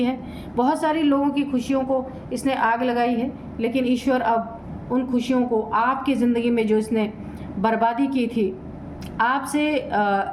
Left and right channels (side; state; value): both; identical; correlation 1.00